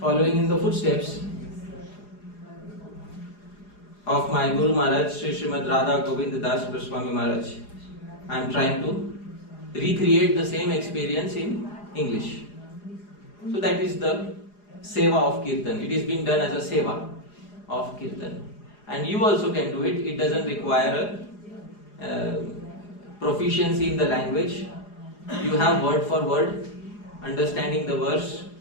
in the footsteps of my Guru Maharaj, Sri Srimad Radha Govind Das Goswami Maharaj, I am trying to recreate the same experience in English. So that is the seva of kirtan. It is being done as a seva of kirtan. And you also can do it. It doesn't require proficiency in the language. You have word for word, understanding the verse,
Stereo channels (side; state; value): right; late; 4.9 ms